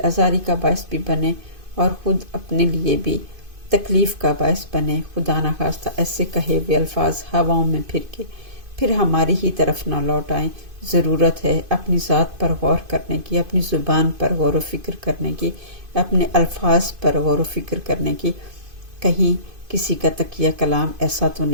آزاری کا باعث بھی بنے اور خود اپنے لیے بھی تکلیف کا باعث بنے۔ خدا نخواستہ ایسے کہے ہوئے الفاظ ہواؤں میں پھر ہماری ہی طرف نہ لوٹ آئیں۔ ضرورت ہے اپنی ذات پر غور کرنے کی، اپنی زبان پر غور و فکر کرنے کی، اپنے الفاظ پر غور و فکر کرنے کی۔ کہیں کسی کا تقیہ کلام ایسا تو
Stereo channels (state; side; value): late; left; 2.5 ms